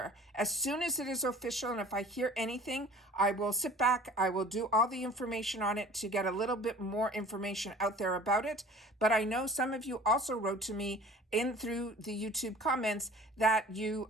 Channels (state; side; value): normal; both; correlation 0.46